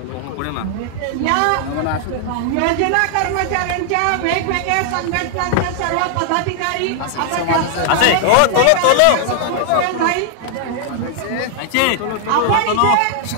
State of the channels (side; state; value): both; different; correlation 0.00